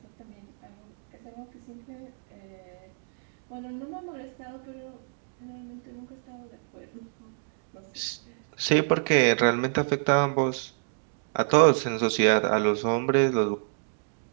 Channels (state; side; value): silent; left; digital silence